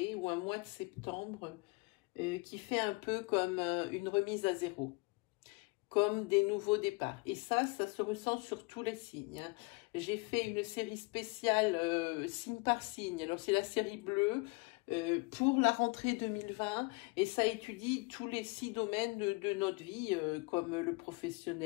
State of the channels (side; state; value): right; quieter; 28.1 dB